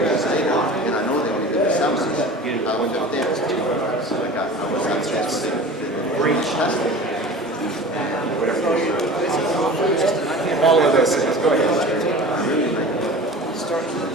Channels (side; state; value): both; normal; correlation 0.38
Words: I know they only did the summer. I went out there, so that's Great testing. All of this is, go ahead.